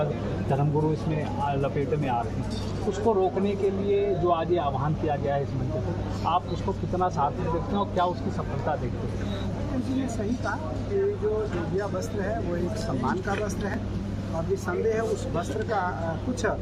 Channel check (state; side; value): identical; both; correlation 1.00